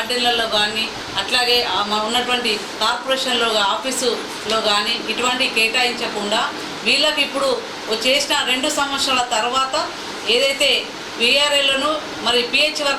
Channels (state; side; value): identical; both; correlation 1.00